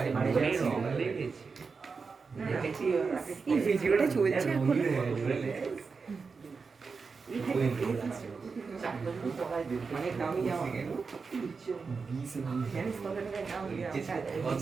রং লেগেছে দেখেছি এই ভিডিওটা চলছে এখন অনেক দামি জামা জানিস কত টাকার দাম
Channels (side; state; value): left; quieter; 4.9 dB